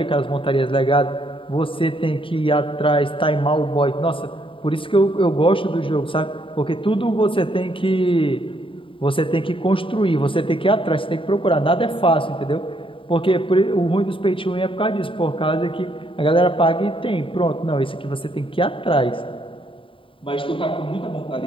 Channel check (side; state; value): right; late; 0.25 ms